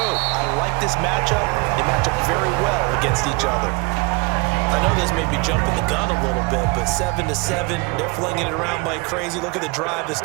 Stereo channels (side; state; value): left; quieter; 27.8 dB